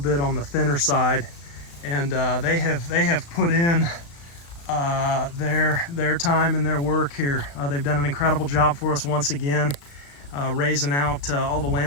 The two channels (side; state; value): right; late; 35 ms